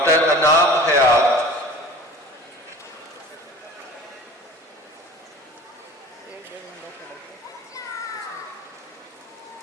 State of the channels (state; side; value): normal; both; correlation 0.41